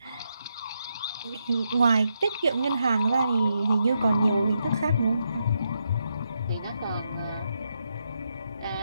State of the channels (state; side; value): inverted; both; correlation -0.82